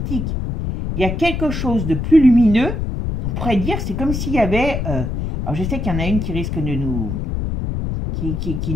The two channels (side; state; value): left; noise; rumble, 3 dB below the sound